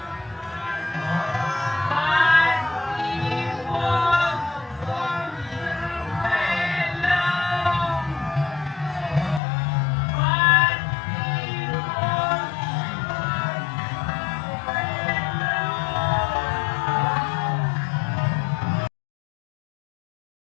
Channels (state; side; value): drops out; right; at 9.4 s